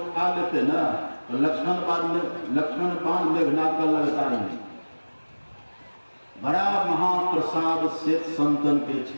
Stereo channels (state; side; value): inverted; both; correlation -1.00